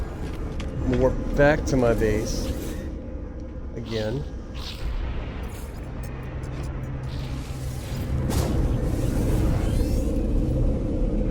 I'm gonna warp back to my base again.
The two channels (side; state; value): both; identical; correlation 1.00